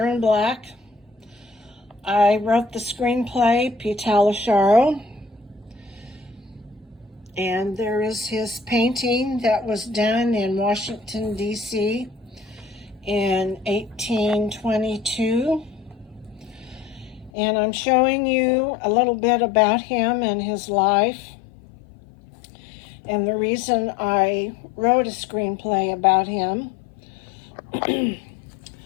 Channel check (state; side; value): drops out; right; at 17.3 s